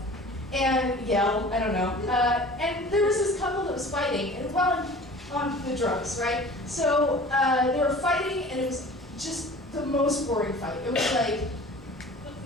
and yell. I don't know. And there was this couple that was fighting, and on the drugs, right? So they were fighting, and it was just the most boring fight. It was like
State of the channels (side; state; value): both; normal; correlation 0.43